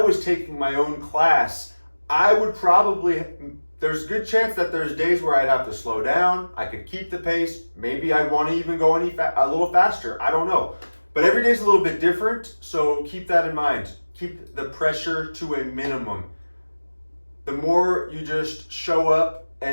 taking my own class, I would there's a good chance that there's days where I'd have to slow down. I could keep the pace. Maybe I want to even go a little faster. I don't know. But every day's a little bit different, so keep that in mind. Keep the pressure to a minimum. The more you just show up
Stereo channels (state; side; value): inverted; both; correlation -1.00